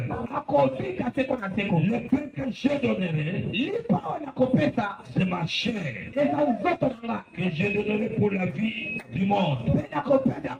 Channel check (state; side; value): identical; both; correlation 1.00